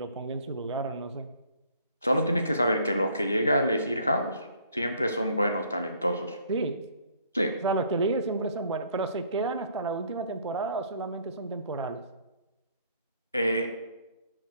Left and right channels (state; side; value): inverted; both; correlation -0.61